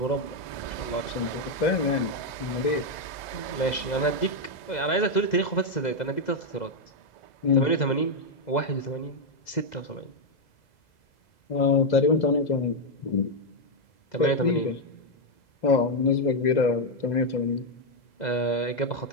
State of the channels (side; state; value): right; late; 2.0 ms